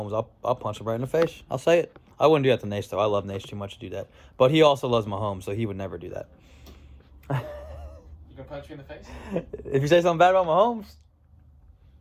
I'll punch him right in the face. I'll say it. I wouldn't do that to Nace, though. I love Nace too much to do that. But he also loves Mahomes, so he would never do that. You gonna punch me in the face? If you say something bad about Mahomes,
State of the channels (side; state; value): both; identical; correlation 1.00